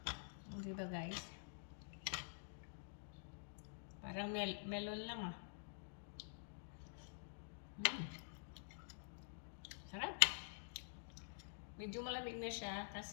Di ba guys? Parang melon lang ah. Sarap. Medyo malamig na siya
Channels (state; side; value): silent; right; digital silence